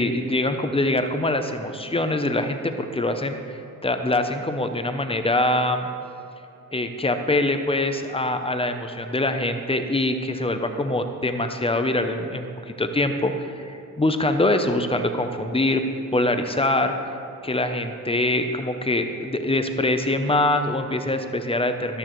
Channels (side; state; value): both; normal; correlation 0.37